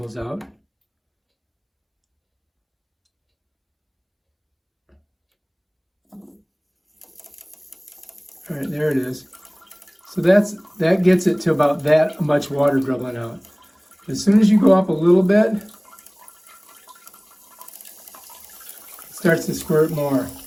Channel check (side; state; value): both; identical; correlation 1.00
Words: out. All right, there it is. So that gets it to about that much water dribbling out. As soon as you go up a little bit, it starts to squirt more.